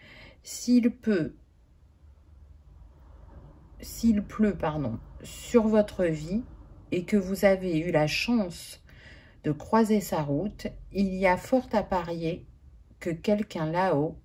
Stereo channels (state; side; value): identical; both; correlation 1.00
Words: s'il pleut, sur votre vie et que vous avez eu la chance de croiser sa route, il y a fort à parier que quelqu'un là-haut